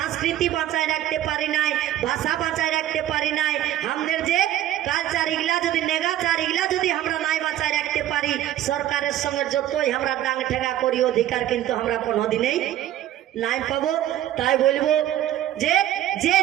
বাঁচায় রাখতে পারি নাই, ভাষা বাঁচায় রাখতে পারি নাই, আমাদের যে কালচার ইগলা যদি নেগাচার ইগলা যদি আমরা নাই বাঁচায় রাখতে পারি, সরকারের সঙ্গে যতই আমরা ডাং ঠেকা করি, অধিকার কিন্তু আমরা কোনোদিনেই নাই পাবো। তাই বলবো যে যে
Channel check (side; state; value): left; quieter; 12.5 dB